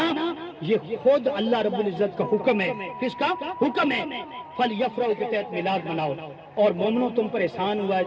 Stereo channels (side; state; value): both; identical; correlation 1.00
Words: یہ خود اللہ رب العزت کا حکم ہے. کس کا حکم ہے؟ فَلْيَفْرَحُوا کے تحت میلاد مناؤ. اور مومنوں تم پر احسان ہوا ہے,